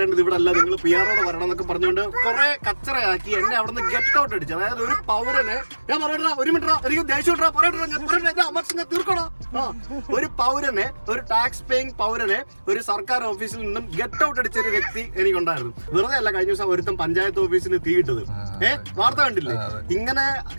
ഇവിടെ അല്ല, നിങ്ങൾ PROട് വരണം എന്നൊക്കെ പറഞ്ഞുകൊണ്ട് കുറെ കച്ചറയാക്കി എന്നെ അവിടെ നിന്ന് ഗെറ്റ് ഔട്ട് അടിച്ചു. അതായത് ഒരു പൗരനെ, ഞാൻ പറയട്ടാ 1 മിനിറ്റ്, എനിക്ക് ദേഷ്യം തീർക്കണോ? ഒരു പൗരനെ, ഒരു ടാക്സ് പേയിങ് പൗരനെ ഒരു സർക്കാർ ഓഫീസിൽ നിന്നും ഗെറ്റ് ഔട്ട് അടിച്ച ഒരു വ്യക്തി എനിക്കുണ്ടായിരുന്നു. വെറുതെ അല്ല, കഴിഞ്ഞ ദിവസം ഒരുത്തം പഞ്ചായത്ത് ഓഫീസിന് തീയിട്ടത്. വാർത്ത കണ്ടില്ലേ?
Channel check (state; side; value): inverted; both; correlation -1.00